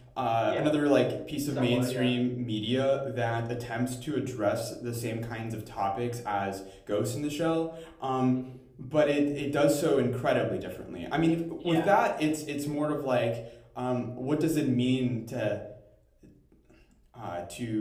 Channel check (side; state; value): both; identical; correlation 1.00